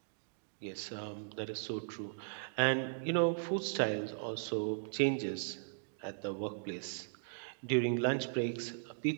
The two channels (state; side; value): silent; left; digital silence